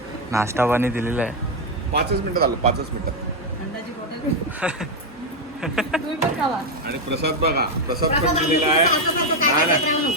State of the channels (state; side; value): normal; both; correlation 0.05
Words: नाश्ता पाणी दिलेला आहे. 5च मिनिटात आलो, 5च मिनिटात. थंडाची बॉटल तुम्ही पण खावा. आणि प्रसाद बघा, प्रसाद पण दिलेला आहे. नाही